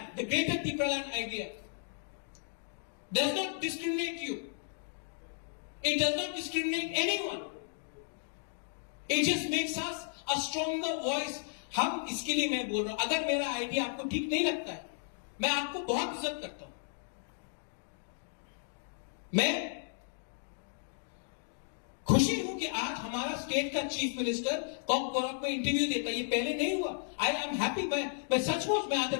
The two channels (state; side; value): silent; right; digital silence